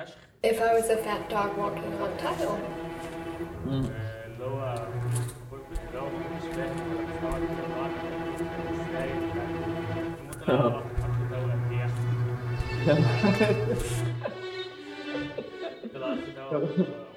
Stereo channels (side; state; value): both; identical; correlation 1.00